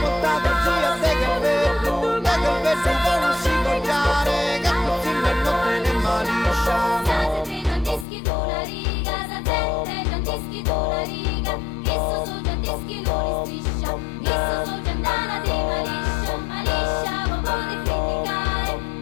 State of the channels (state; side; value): drops out; right; at 8.1 s